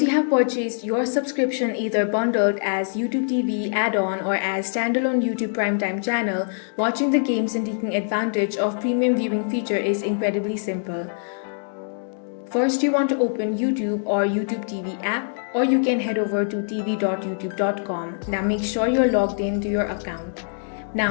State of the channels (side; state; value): right; silent; digital silence